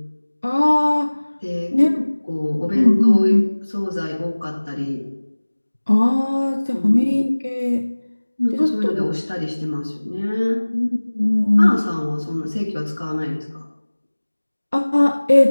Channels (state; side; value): inverted; both; correlation -1.00